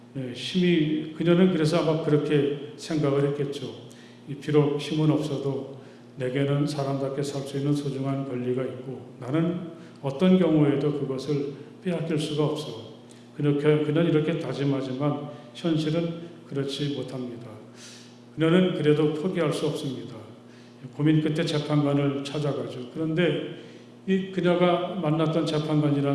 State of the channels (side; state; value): both; identical; correlation 1.00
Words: 힘이, 그녀는 그래서 아마 그렇게 생각을 했겠죠. 비록 힘은 없어도 내게는 사람답게 살 수 있는 소중한 권리가 있고 나는 어떤 경우에도 그것을 빼앗길 수가 없어. 그는 이렇게 다짐하지만 현실은 그렇지 못합니다. 그녀는 그래도 포기할 수 없습니다. 고민 끝에 재판관을 찾아가죠. 그런데 이 그녀가 만났던